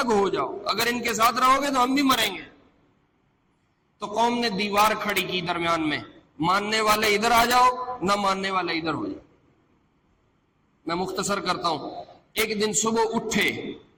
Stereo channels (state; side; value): identical; both; correlation 1.00